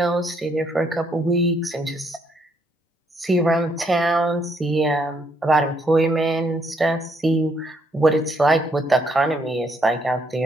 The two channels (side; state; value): both; normal; correlation 0.71